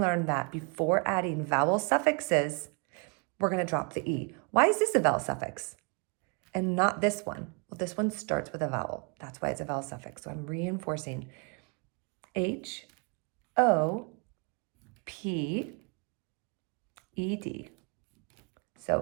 that before adding vowel suffixes, we're going to drop the E. Why is this a vowel suffix and not this one? Well, this one starts with a vowel. That's why it's a vowel suffix. So I'm reinforcing H-O-P-E-D.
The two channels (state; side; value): quieter; left; 34.4 dB